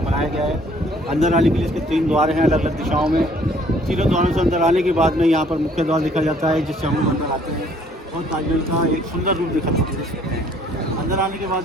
बनाया गया है। अंदर आने के लिए इसके 3 द्वार हैं अलग अलग दिशाओं में। तीनों द्वारों से अंदर आने के बाद में यहाँ पर मुख्य द्वार देखा जाता है जिससे हम लोग अंदर आते हैं और ताजमहल का एक सुंदर रूप देखा सकते हैं। अंदर आने के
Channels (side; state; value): both; normal; correlation 0.60